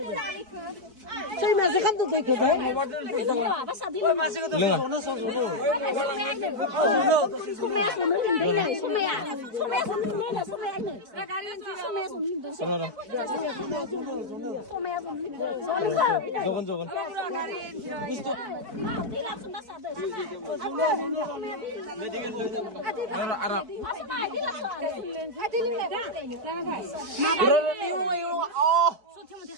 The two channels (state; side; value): late; left; 4.6 ms